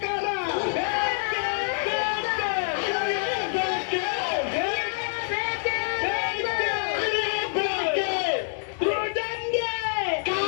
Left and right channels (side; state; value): right; silent; digital silence